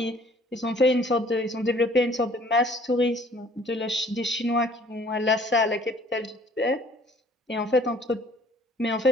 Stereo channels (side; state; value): both; normal; correlation 0.56